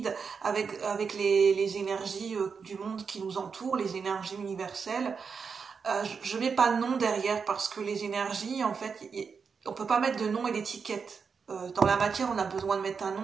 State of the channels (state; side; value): quieter; left; 5.7 dB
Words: avec les énergies du monde qui nous entoure, les énergies universelles. Je mets pas de nom derrière parce que les énergies, en fait, on peut pas mettre de nom et d'étiquette. Dans la matière, on a besoin de mettre un